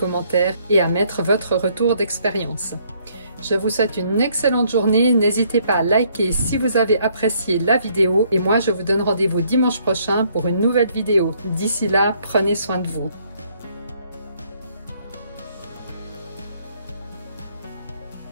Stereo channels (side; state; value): both; inverted; correlation -0.67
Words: et à mettre votre retour d'expérience. Je vous souhaite une excellente journée. N'hésitez pas à liker si vous avez apprécié la vidéo. Et moi, je vous donne rendez-vous dimanche prochain pour une nouvelle vidéo. D'ici là, prenez soin de vous.